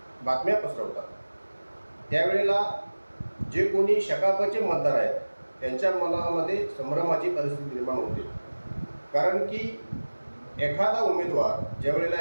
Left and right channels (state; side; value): inverted; both; correlation -1.00